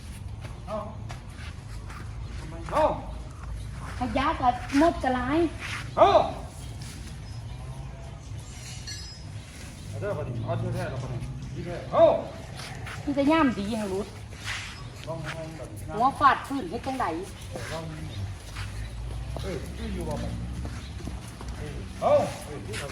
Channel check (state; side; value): identical; both; correlation 1.00